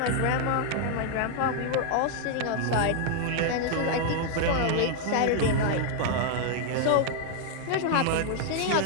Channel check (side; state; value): both; different; correlation 0.00